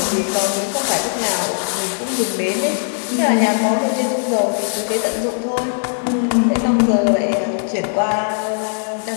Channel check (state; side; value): silent; right; 62 dB below the other